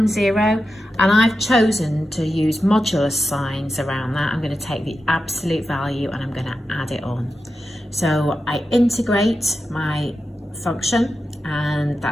0, and I've chosen to use modulus signs around that. I'm going to take the absolute value and I'm going to add it on. So I integrate my function, and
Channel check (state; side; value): normal; both; correlation 0.90